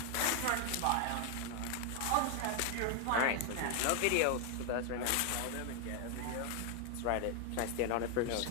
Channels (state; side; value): different; both; correlation 0.00